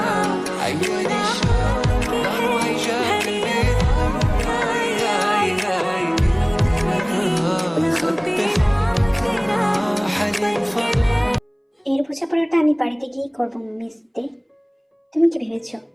عياني الشوق روح جاب قلبي এর বোঝাপড়াটা আমি বাড়িতে গিয়ে করবো মিস দে। তুমি কি ভেবেছো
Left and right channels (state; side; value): identical; both; correlation 1.00